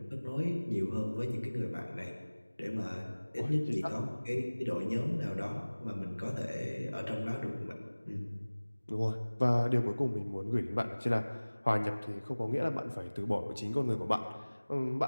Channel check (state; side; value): inverted; both; correlation -1.00